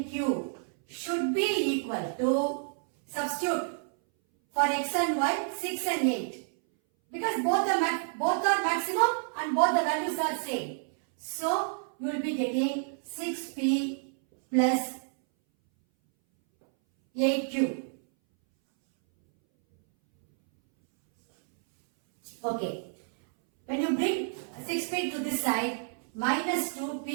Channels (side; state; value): left; silent; 58 dB below the other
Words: should be equal to, substitute for x and y, 6 and 8. Because both are maximum and both the values are same. So, you will be getting 6p plus 8q. Okay. When you bring 6p to this side, minus